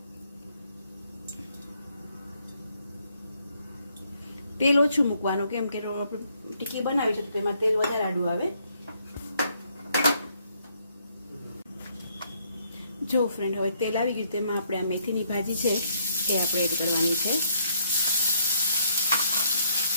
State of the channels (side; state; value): both; inverted; correlation -0.70